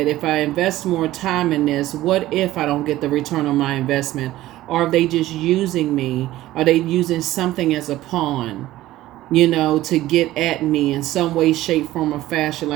if I invest more time in this, what if I don't get the return on my investment? Or are they just using me? Are they using something as a pawn, to get at me in some way, shape, form, or fashion?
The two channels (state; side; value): quieter; left; 15.6 dB